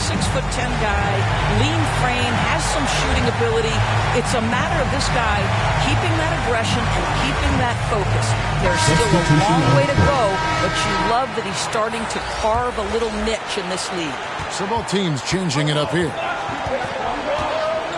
guy, lean frame, has some shooting ability. It's a matter of this guy keeping that aggression and keeping that focus. There's still a long way to go, but you love that he's starting to carve a little niche in this league. So both teams changing it up here.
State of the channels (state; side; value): identical; both; correlation 1.00